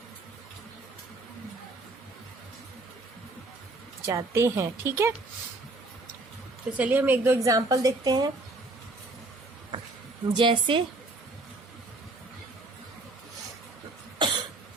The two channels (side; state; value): left; quieter; 3.0 dB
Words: जाते हैं, ठीक है। तो चलिए हम 1-2 एग्जाम्पल देखते हैं। जैसे